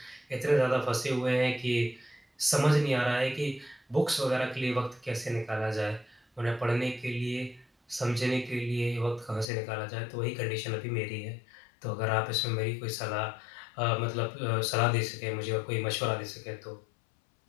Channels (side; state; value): right; drops out; at 9.5 s